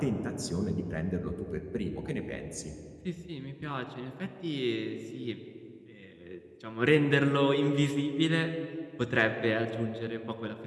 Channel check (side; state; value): both; identical; correlation 1.00